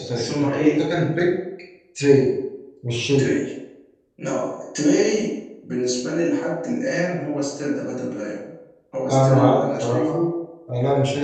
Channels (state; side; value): identical; both; correlation 1.00